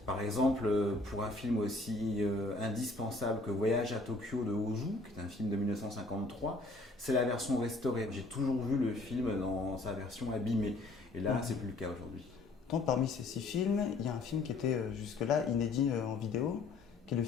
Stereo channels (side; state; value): right; quieter; 3.2 dB